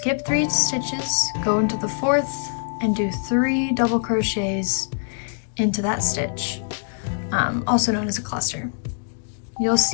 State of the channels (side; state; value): right; silent; digital silence